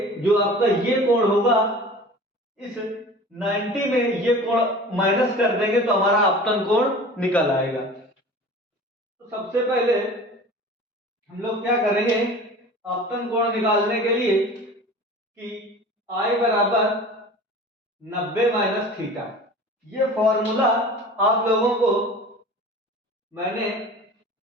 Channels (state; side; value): normal; both; correlation 0.40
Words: जो आपका ये कोण होगा इस 90 में ये कोण माइनस कर देंगे तो हमारा आपतन कोण निकल आएगा। तो सबसे पहले हम लोग क्या करेंगे आपतन कोण निकालने के लिए कि I बराबर 90 माइनस थीटा। ये फॉर्मूला आप लोगों को मैंने